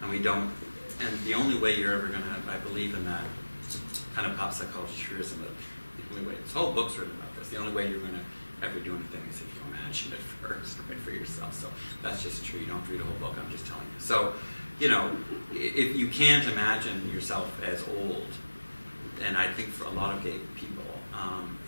And we don't, and the only way you're ever going to, I believe in that kind of pop psychology truism, that the only way, this whole book's written about this, the only way you're going to ever do anything is if you imagine it first, right, for yourself. So that's just true. You don't have to read a whole book, I'm just telling you. So, if you can't imagine yourself as old, and I think for a lot of gay people,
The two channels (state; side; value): inverted; both; correlation -1.00